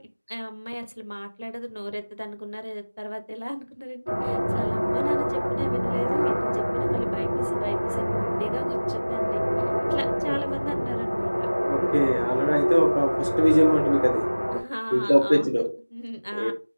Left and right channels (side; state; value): both; inverted; correlation -1.00